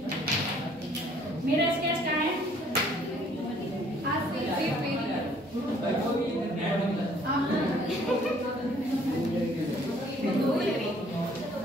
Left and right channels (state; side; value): normal; both; correlation 0.60